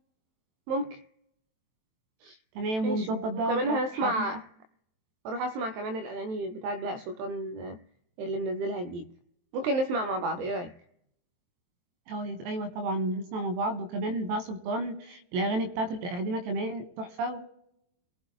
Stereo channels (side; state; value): left; late; 23 ms